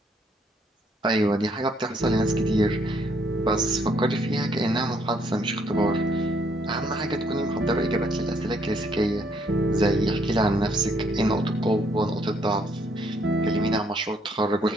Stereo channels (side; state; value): both; normal; correlation 0.69